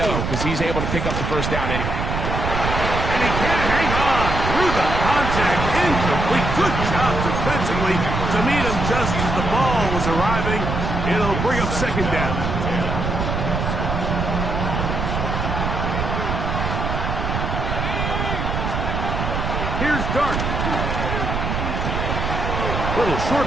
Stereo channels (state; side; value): noise; right; rumble, 2 dB below the sound